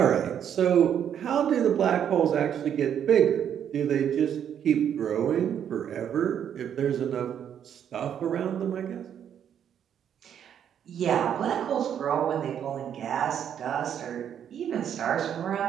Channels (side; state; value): left; quieter; 9.0 dB